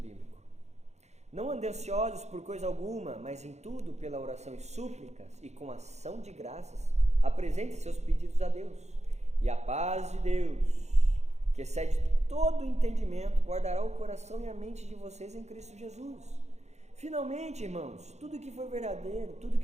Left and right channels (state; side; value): late; left; 0.32 ms